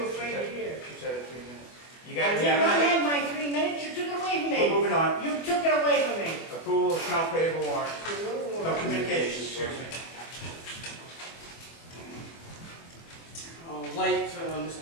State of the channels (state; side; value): late; right; 24 ms